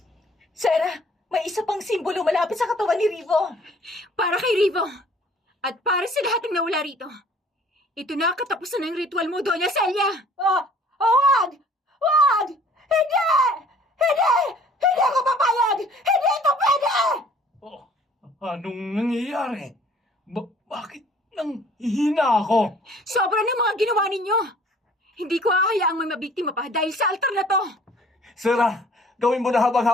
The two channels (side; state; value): both; normal; correlation 0.54